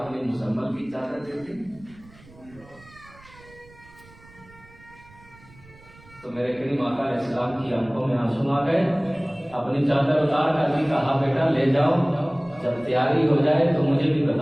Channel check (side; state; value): right; noise; rumble, 24 dB below the sound